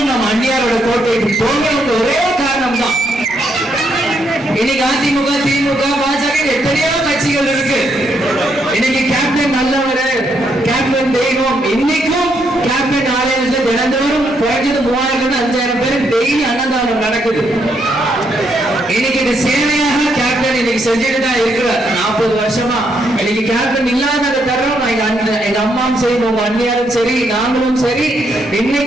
நம்ம அந்நியாரோட கோட்டைக்கு போகணும். ஒரே காரணம் தான். இன்னைக்கு அதிமுக, திமுக, பாஜக எத்தனையோ கட்சிகள் இருக்கு. இன்னைக்கு கேப்டன் நல்லவர், கேப்டன் தெய்வம். இன்னைக்கும் கேப்டன் ஆலயத்துல தினந்தோறும் குறைஞ்சது 3000 5000 பேர் டெய்லி அன்னதானம் நடக்குது. இன்னைக்கு இது சேவையாக கேப்டன் இன்னைக்கு செஞ்சுட்டு தான் இருக்கிறார் 40 வருஷமா. இன்னைக்கு கேப்டன் இல்லாத தருணம் எங்க அம்மாவும் சரி, உங்க அண்ணியாரும் சரி, நாங்களும் சரி,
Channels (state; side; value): noise; left; hum, 28 dB below the sound